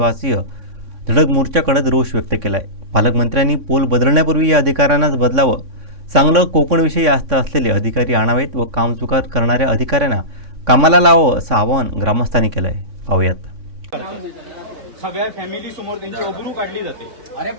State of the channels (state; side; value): late; left; 3.6 ms